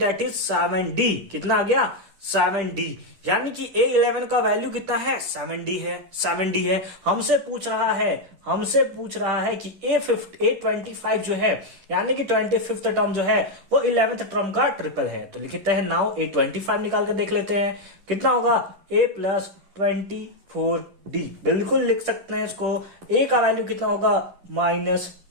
is 7D। कितना आ गया? 7D। यानी कि A11 का वैल्यू कितना है? 7D है। हमसे पूछ रहा है कि A25 जो है, यानी कि 25th टर्म जो है वो 11th टर्म का ट्रिपल है। तो लिखते हैं नाउ A25 निकाल कर देख लेते हैं कितना होगा? A plus 24D। बिल्कुल लिख सकते हैं इसको। A का वैल्यू कितना होगा? माइनस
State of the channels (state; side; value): late; left; 10 ms